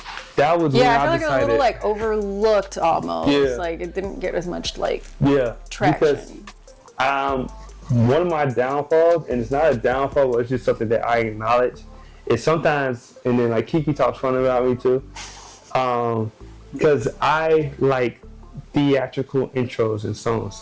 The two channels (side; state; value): both; identical; correlation 1.00